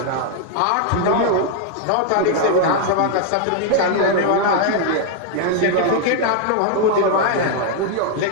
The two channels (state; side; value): different; both; correlation 0.00